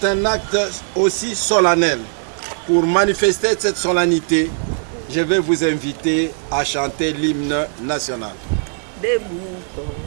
un acte aussi solennel, pour manifester cette solennité, je vais vous inviter à chanter l'hymne national. Debout,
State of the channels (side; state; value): left; silent; 67 dB below the other